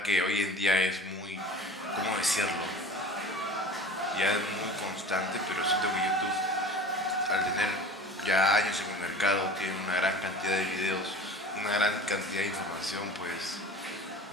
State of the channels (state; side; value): normal; both; correlation 0.39